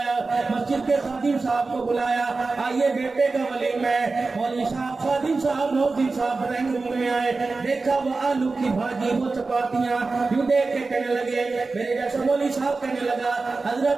مسجد کے خادم صاحب کو بلایا، آئیے بیٹے کا ولیمہ ہے۔ مولوی صاحب، خادم صاحب، مؤذن صاحب ڈرائنگ روم میں آئے، دیکھا وہ آلو کی بھاجی، وہ چپاتیاں، یوں دیکھ کے کہنے لگے، میرے جیسا مولوی صاحب کہنے لگا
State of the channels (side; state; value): left; quieter; 3.8 dB